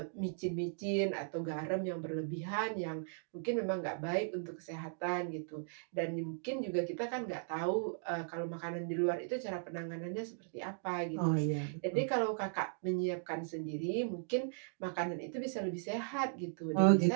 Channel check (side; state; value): left; silent; digital silence